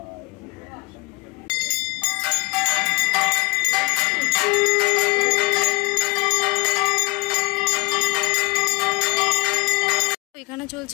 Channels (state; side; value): quieter; right; 25.4 dB